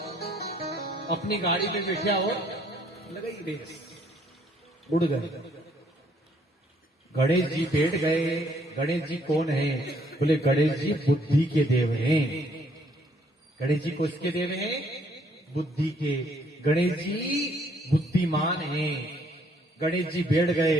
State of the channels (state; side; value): normal; both; correlation 0.66